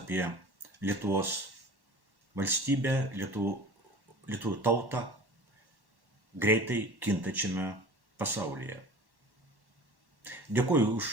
Lietuvos valstybę, Lietuvų tautą greitai kintačiame pasaulyje. Dėkuoju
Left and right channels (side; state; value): left; late; 1.1 ms